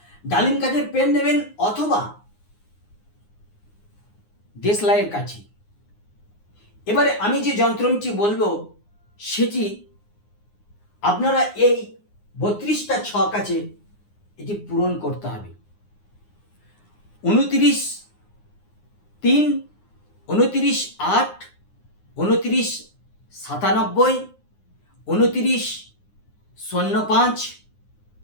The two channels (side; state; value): right; late; 9.7 ms